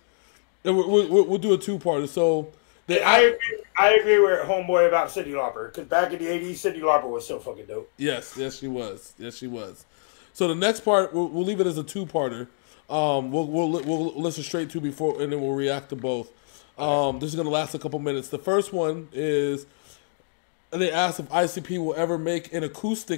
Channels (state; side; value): silent; right; digital silence